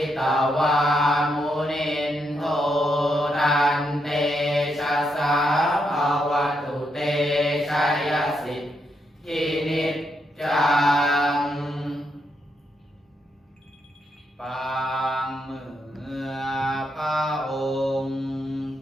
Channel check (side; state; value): both; normal; correlation 0.80